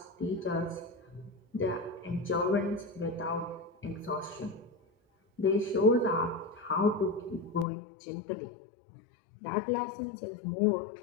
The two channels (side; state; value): right; drops out; at 7.7 s